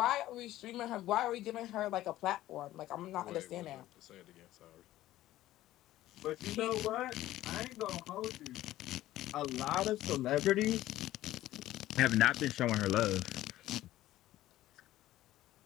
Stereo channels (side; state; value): right; quieter; 14.8 dB